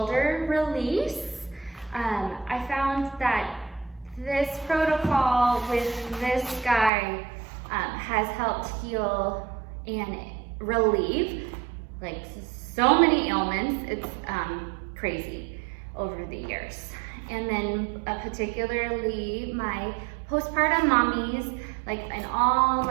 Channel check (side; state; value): left; drops out; at 6.9 s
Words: release. I found that this protocol with this guy has helped heal and relieve like so many ailments. It's crazy over the years. And then particularly my postpartum mommies, like in all